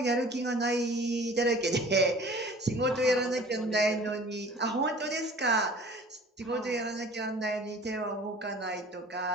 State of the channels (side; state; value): both; normal; correlation 0.47